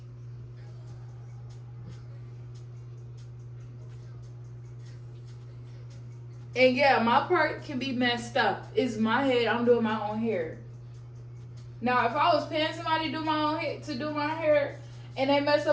And yeah, my part can be messed up. It's my head. I'm doing my own hair. Now, if I was paying somebody to do my hair, and they mess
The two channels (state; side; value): identical; both; correlation 1.00